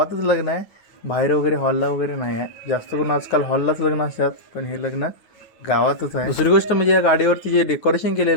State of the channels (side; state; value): right; late; 9.5 ms